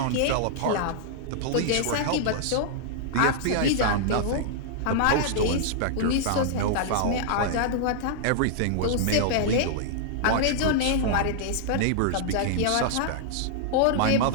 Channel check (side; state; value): both; different; correlation -0.01